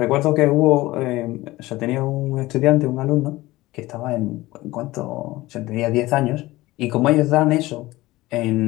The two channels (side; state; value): right; quieter; 18.7 dB